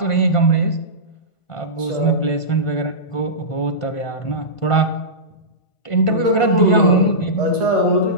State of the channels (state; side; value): late; right; 1.5 ms